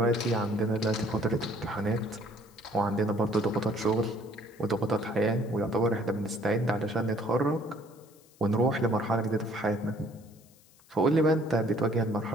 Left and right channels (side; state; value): left; noise; hiss, 28 dB below the sound